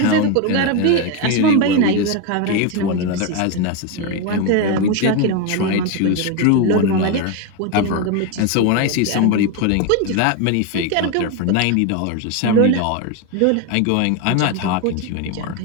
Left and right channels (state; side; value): different; both; correlation 0.02